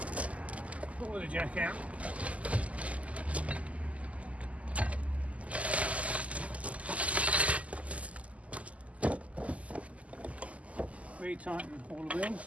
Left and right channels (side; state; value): left; late; 0.068 ms